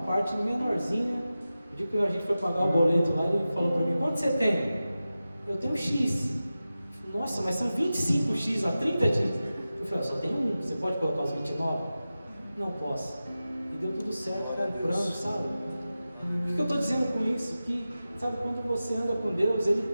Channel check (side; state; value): both; inverted; correlation -0.94